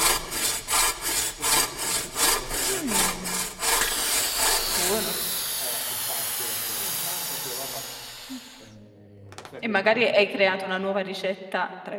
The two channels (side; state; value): both; identical; correlation 1.00